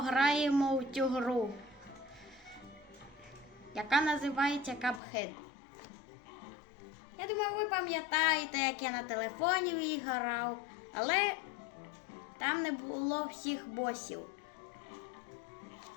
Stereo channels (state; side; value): drops out; right; at 5.0 s